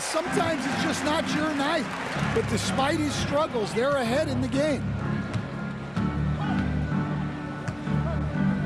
sometimes it's just not your night. But despite his struggles, they're ahead in the game.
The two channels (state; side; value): noise; left; hum, 25 dB below the sound